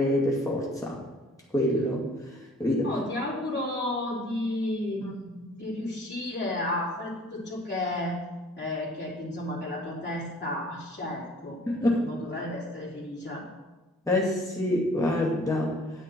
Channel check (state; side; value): normal; both; correlation 0.53